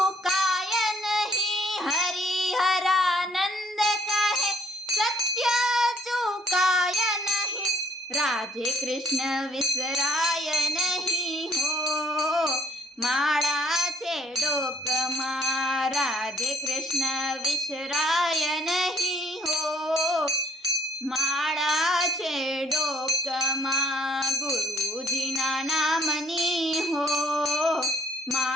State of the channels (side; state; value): both; normal; correlation 0.63